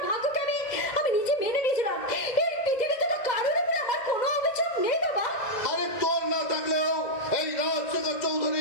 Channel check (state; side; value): late; right; 2.0 ms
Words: ভাগ্যকে আমি নিজে মেনে নিয়েছিলাম। এই পৃথিবীতে তো কারোর উপরে আমার কোনো অভিযোগ নেই বাবা। আরে তোর না থাকলেও এই রাজশেখর